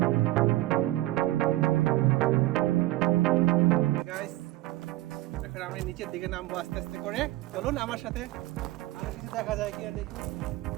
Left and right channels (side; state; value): left; quieter; 17.2 dB